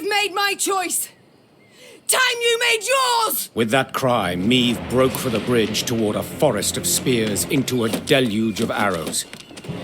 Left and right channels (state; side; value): identical; both; correlation 1.00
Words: made my choice. Time you made yours! With that cry, Meve broke for the bridge toward a forest of spears into a deluge of arrows.